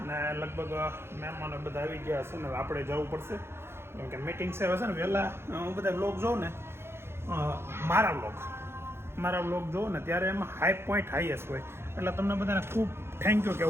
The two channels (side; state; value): left; late; 0.12 ms